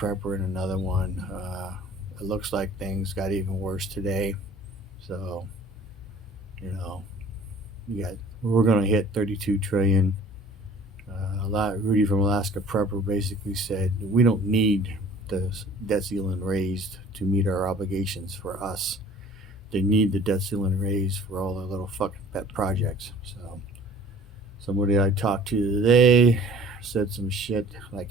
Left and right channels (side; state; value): both; normal; correlation 0.49